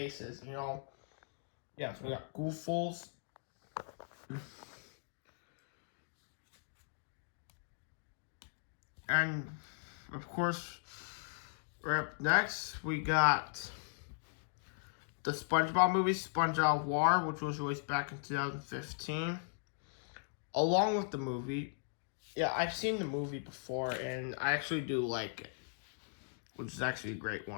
you know. Yeah, so we got Gooffuls. And of course, right up next we got the SpongeBob movie, Sponge Out of Water, which was released back in 2015. Along with the movie. Yeah, I've seen the movie before, and I actually do like it, which is actually a great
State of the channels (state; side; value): silent; right; digital silence